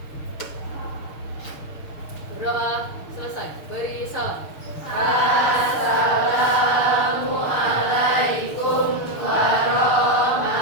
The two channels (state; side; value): late; right; 6.7 ms